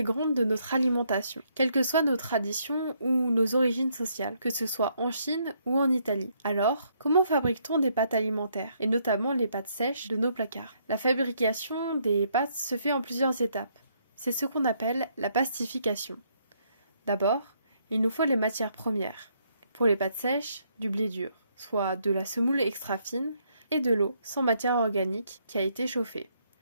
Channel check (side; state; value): both; inverted; correlation -0.72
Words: de notre alimentation, quelles que soient nos traditions ou nos origines sociales, que ce soit en Chine ou en Italie. Alors, comment fabrique-t-on des pâtes alimentaires, et notamment les pâtes sèches de nos placards? La fabrication des pâtes se fait en plusieurs étapes. C'est ce qu'on appelle la pastification. D'abord, il nous faut les matières premières. Pour les pâtes sèches, du blé dur, soit de la semoule extra fine, et de l'eau sans matière organique qui a été chauffée.